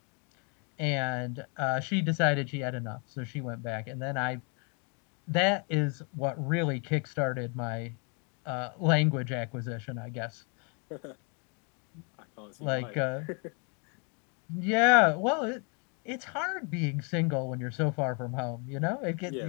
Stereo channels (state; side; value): quieter; right; 36.0 dB